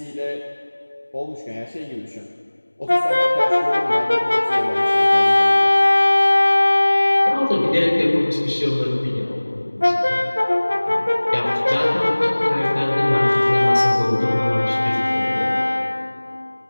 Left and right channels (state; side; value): inverted; both; correlation -1.00